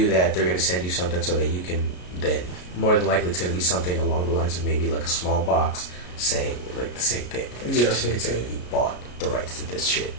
that, they're going to send you something so that you can then, more than likely, it's going to be something along the lines of maybe like a small box saying like the same thing. Like, it's saying you bought the rights to this shit.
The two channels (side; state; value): right; late; 33 ms